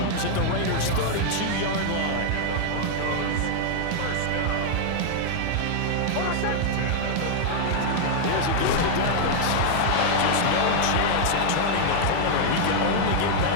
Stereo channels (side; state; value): both; different; correlation 0.00